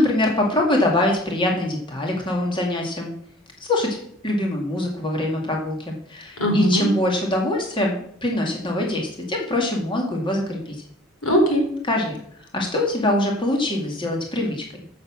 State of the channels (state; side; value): normal; both; correlation 0.49